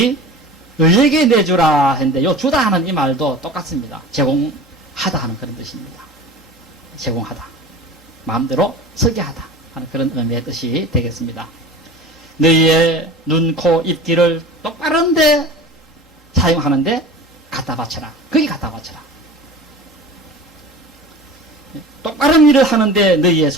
의에게 내주라 했는데 요 주다 하는 이 말도 똑같습니다. 제공하다 하는 그런 뜻입니다. 제공하다. 마음대로 서게 하다 하는 그런 의미의 뜻이 되겠습니다. 너희의 눈, 코, 입, 귀를 똑바른데 사용하는데 갖다 바쳐라. 거기 갖다 바쳐라. 똑바른 일을 하는데 너희의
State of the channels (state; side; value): normal; both; correlation 0.37